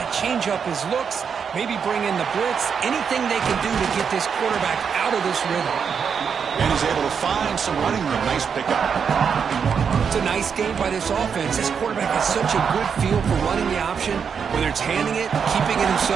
change up his looks, maybe bring in the blitz, anything they can do to get this quarterback out of this rhythm. And he's able to find some running room. Nice pickup. It's a nice game by this offense. This quarterback has such a good feel for running the option. Whether it's handing it, keeping it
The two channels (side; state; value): left; quieter; 6.7 dB